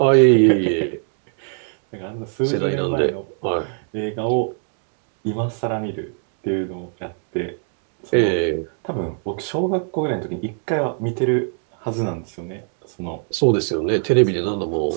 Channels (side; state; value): left; silent; 56 dB below the other